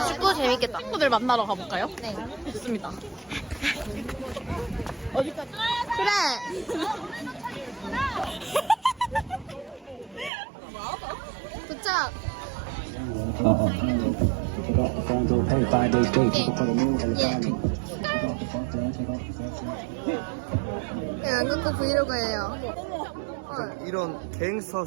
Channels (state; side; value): drops out; left; at 10.3 s